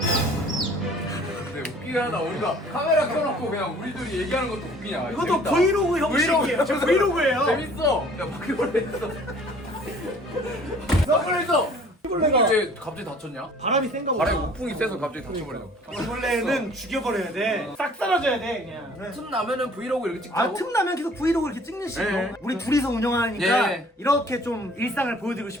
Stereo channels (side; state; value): both; normal; correlation 0.53